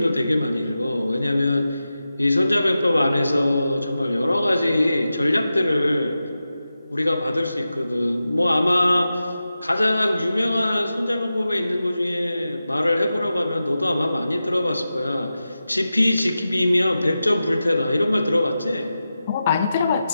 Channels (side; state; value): both; inverted; correlation -0.92